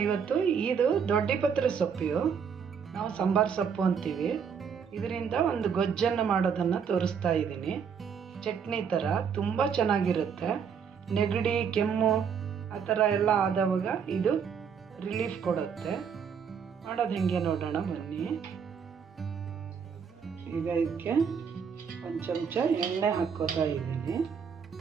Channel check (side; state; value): left; quieter; 6.9 dB